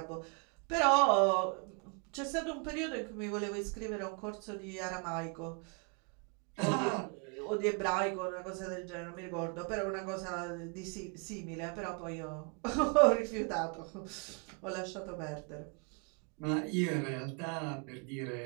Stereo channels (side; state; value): left; quieter; 36.3 dB